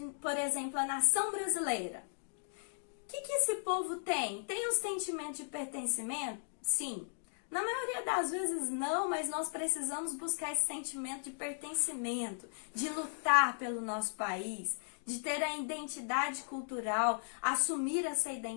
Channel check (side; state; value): right; silent; digital silence